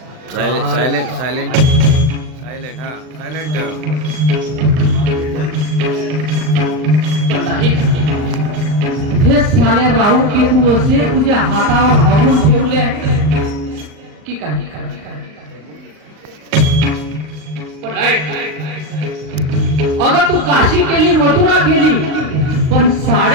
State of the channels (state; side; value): late; left; 39 ms